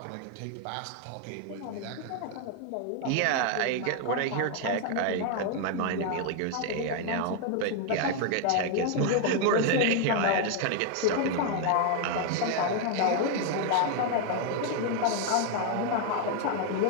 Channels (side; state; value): both; different; correlation 0.01